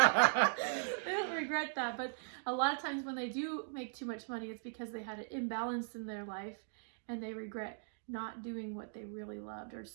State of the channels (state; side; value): silent; left; digital silence